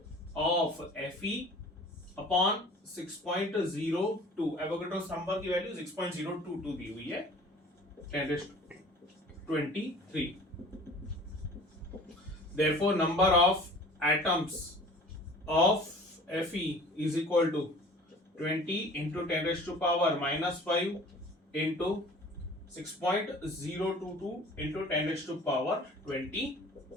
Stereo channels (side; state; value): both; normal; correlation 0.46